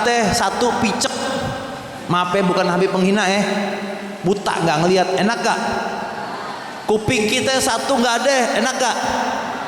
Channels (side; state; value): both; identical; correlation 1.00